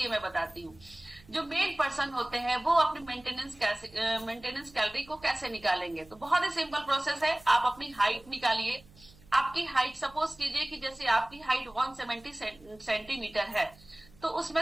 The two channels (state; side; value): noise; right; hum, 25 dB below the sound